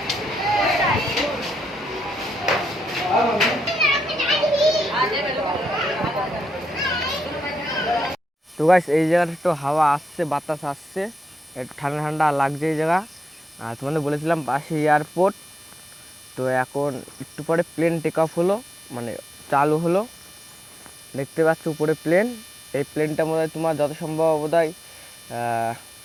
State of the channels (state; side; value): normal; both; correlation 0.85